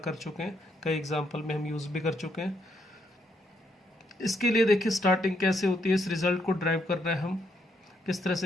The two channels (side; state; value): both; normal; correlation 0.75